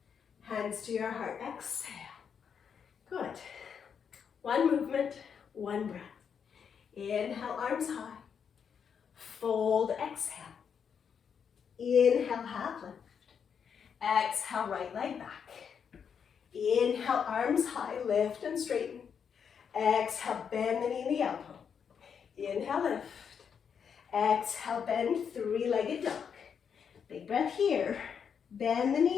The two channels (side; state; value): right; quieter; 7.1 dB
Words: hands to your heart, exhale. Good. 1 movement, 1 breath. Inhale, arms high. Fold, exhale. Inhale, half lift. Exhale, right leg back. Inhale, arms high, lift and straighten. Exhale, bend the knee and the elbow. Inhale, lift. Exhale, bend, 3-legged dog. Big breath here. Bend the